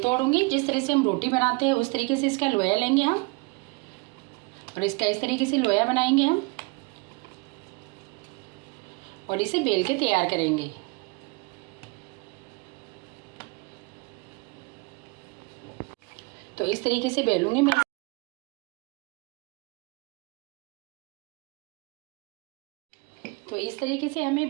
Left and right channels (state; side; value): quieter; left; 28.1 dB